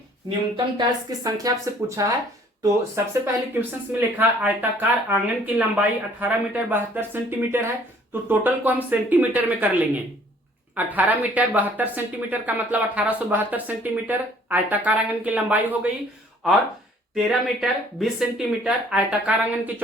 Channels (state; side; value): normal; both; correlation 0.57